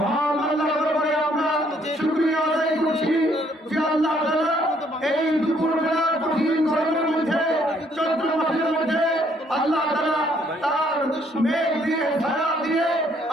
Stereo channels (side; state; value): both; normal; correlation 0.67